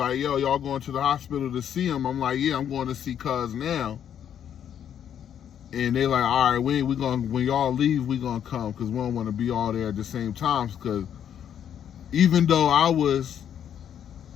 yo, y'all going to the hospital to see him? I'm like, yeah, I'm going to see cuz now. And they like, all right, when y'all leave, we gonna come, because we don't want to be all there at the same time. Because even though I was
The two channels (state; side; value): quieter; right; 9.3 dB